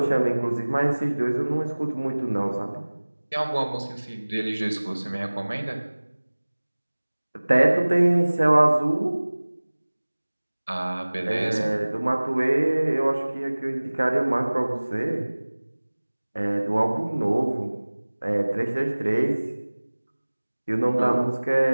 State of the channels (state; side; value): inverted; both; correlation -1.00